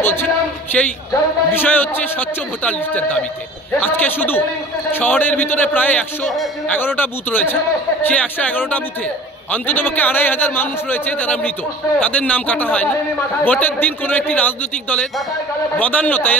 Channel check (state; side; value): normal; both; correlation 0.44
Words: বলছি, সেই বিষয় হচ্ছে স্বচ্ছ ভোটার লিস্টের দাবিতে। আজকে শুধু শহরের ভিতরে প্রায় 111টা বুথ রয়েছে। সেই 111টা বুথে অন্ততপক্ষে 2500 মানুষ রয়েছে যারা মৃত, তাদের নাম কাটা হয়নি। ভোটের দিন কোনো একটি রাজনৈতিক দলের বদান্যতায়